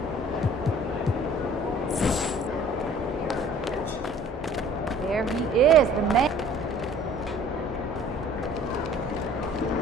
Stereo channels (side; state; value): both; normal; correlation 0.52